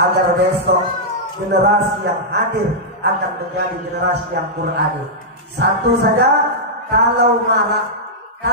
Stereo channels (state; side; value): normal; both; correlation -0.09